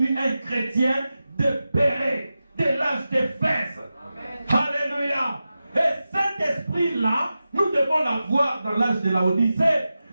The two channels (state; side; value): inverted; both; correlation -0.93